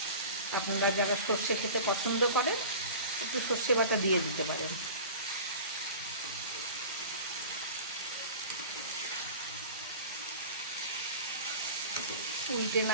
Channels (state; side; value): inverted; both; correlation -0.37